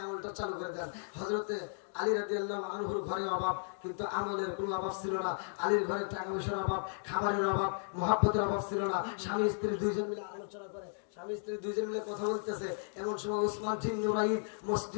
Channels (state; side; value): silent; right; digital silence